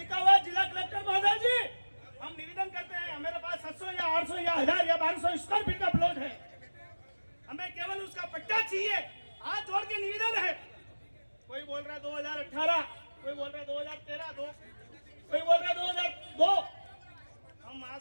हुआ है जिला कलेक्टर महोदय जी, हम निवेदन करते हैं हमारे पास 700 या 800 या 1000 या 1200 स्क्वायर फीट का प्लॉट है, हमें केवल उसका पट्टा चाहिए। हाथ जोड़ के निवेदन है। कोई बोल रहा है 2018, कोई बोल रहा है 2013, कोई बोल रहा है 2002। हम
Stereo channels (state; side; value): inverted; both; correlation -1.00